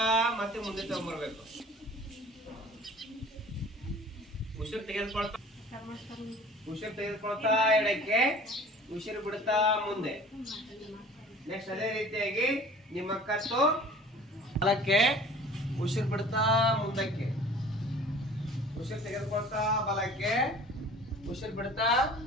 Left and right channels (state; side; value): normal; both; correlation 0.46